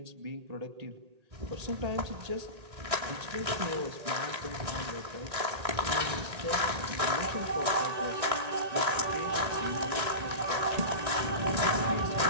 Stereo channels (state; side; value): late; left; 1.8 ms